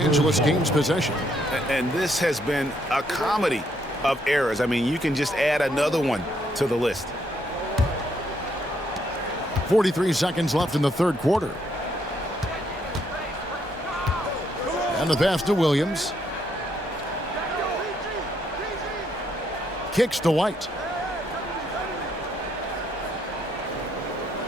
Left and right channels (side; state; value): both; normal; correlation 0.73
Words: gains possession. And this has been a comedy of errors. I mean, you can just add another one to the list. 43 seconds left in the third quarter. And the pass to Williams. Kicks to White.